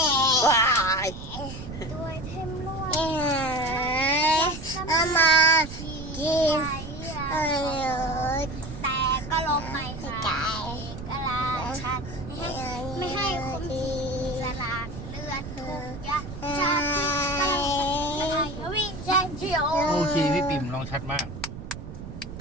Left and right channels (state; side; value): noise; right; rumble, 10 dB below the sound